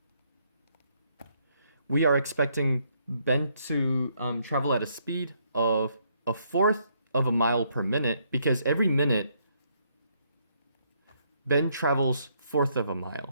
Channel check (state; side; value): inverted; both; correlation -0.72